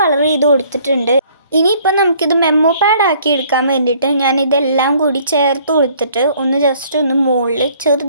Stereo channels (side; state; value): both; inverted; correlation -0.59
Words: കളർ ചെയ്ത് കൊടുത്തിട്ടുണ്ട്. ഇനിയിപ്പോൾ നമുക്കിത് മെമ്മോ പാഡ് ആക്കി എടുക്കാൻ വേണ്ടിയിട്ട് ഞാൻ ഇതെല്ലാം കൂടി ചേർത്ത് കൊടുത്തിട്ട് ജസ്റ്റ് ഒന്ന് മുകളിൽ